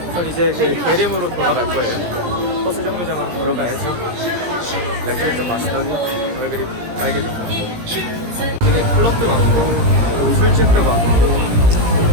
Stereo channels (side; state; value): left; late; 17 ms